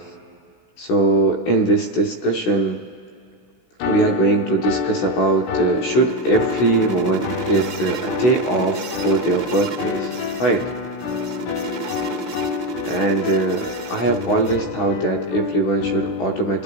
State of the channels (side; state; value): right; late; 16 ms